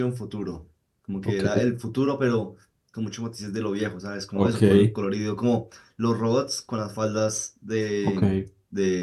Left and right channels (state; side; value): identical; both; correlation 1.00